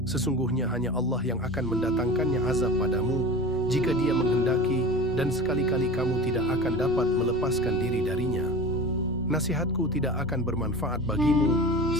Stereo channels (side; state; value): both; normal; correlation 0.33